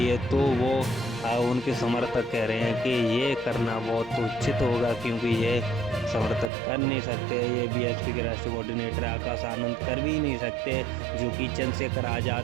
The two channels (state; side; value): drops out; left; at 6.5 s